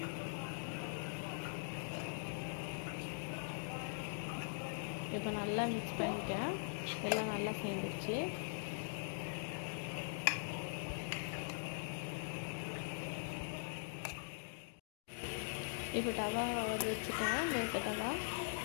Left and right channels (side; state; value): right; silent; digital silence